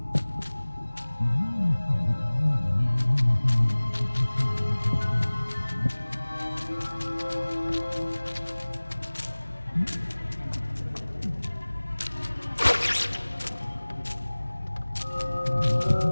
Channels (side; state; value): both; inverted; correlation -1.00